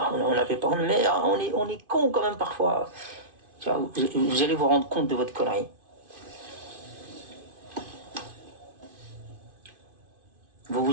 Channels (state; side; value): late; left; 2.5 ms